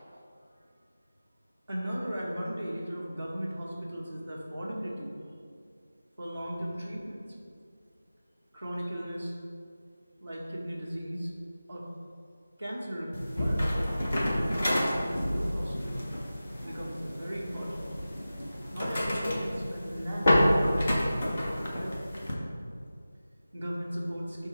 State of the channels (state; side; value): inverted; both; correlation -0.95